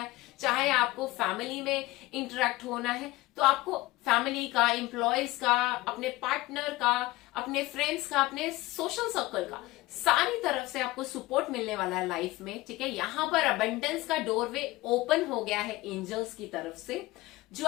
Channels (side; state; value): right; quieter; 19.4 dB